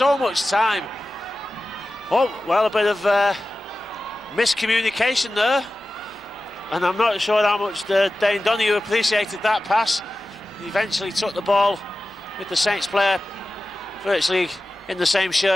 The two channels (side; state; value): both; normal; correlation 0.95